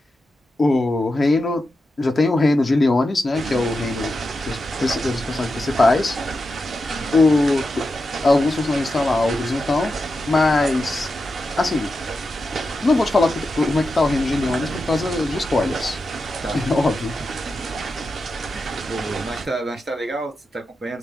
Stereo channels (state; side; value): normal; both; correlation 0.89